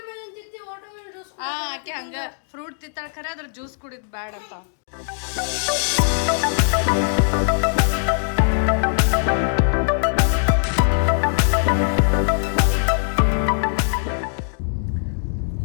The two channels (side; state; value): right; silent; digital silence